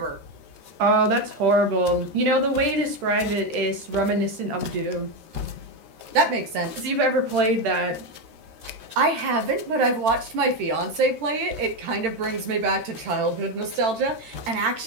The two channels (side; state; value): left; late; 13 ms